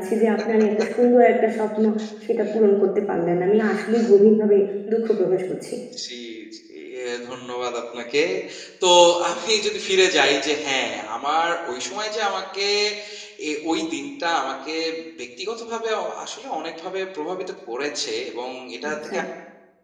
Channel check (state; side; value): identical; both; correlation 1.00